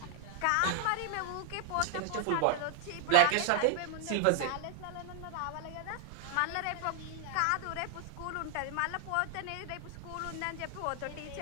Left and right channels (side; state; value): both; different; correlation 0.00